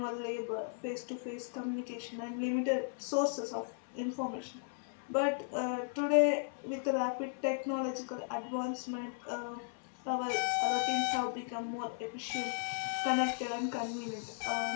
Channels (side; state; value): right; silent; 54 dB below the other